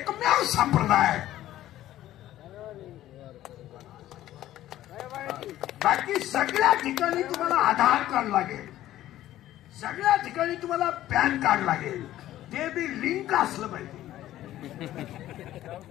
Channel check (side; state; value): right; quieter; 13.8 dB